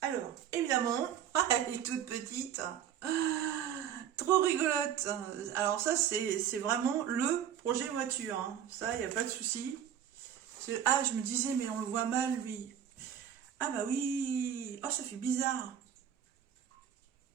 Alors, évidemment, elle est toute petite. Trop rigolote. Alors ça, c'est vraiment le projet voiture. Hein. Ça, il n'y a pas de souci. Ah, je me disais, mais on le voit mal, lui. Ah bah oui. Oh, ça fait bizarre.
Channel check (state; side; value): quieter; left; 9.4 dB